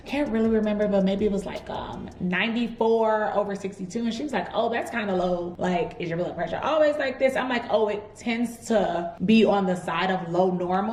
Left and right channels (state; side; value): identical; both; correlation 1.00